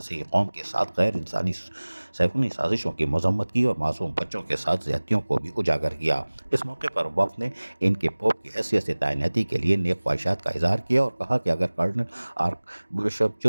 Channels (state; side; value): inverted; both; correlation -1.00